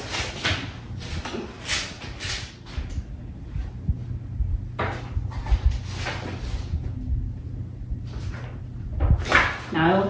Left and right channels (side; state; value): both; identical; correlation 1.00